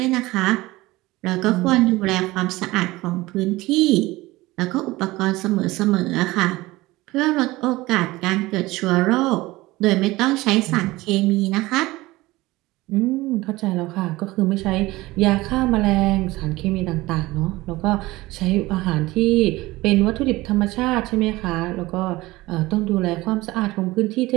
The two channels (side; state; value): left; quieter; 19.5 dB